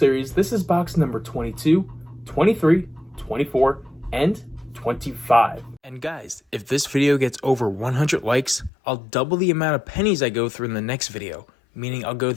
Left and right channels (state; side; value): drops out; right; at 8.7 s